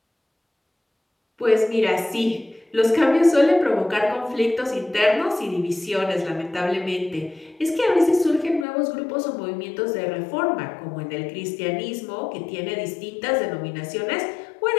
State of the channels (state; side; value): drops out; right; at 8.7 s